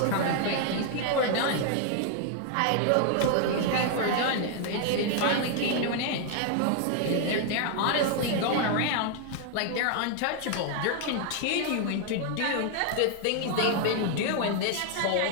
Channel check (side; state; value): both; different; correlation 0.00